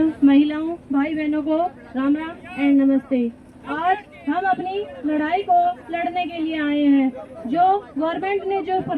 महिलाओं, भाई बहनों को राम राम एंड नमस्ते। आज हम अपनी लड़ाई को लड़ने के लिए आए हैं। जो गवर्नमेंट ने जो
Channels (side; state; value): both; identical; correlation 1.00